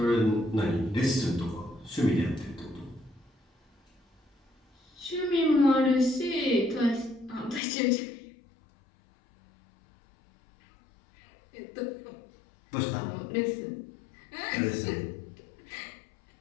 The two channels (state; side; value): drops out; right; at 7.6 s